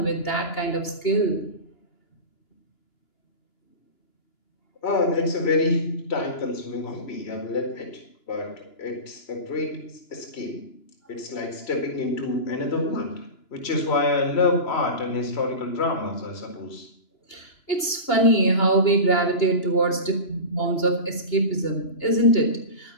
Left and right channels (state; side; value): late; right; 2.9 ms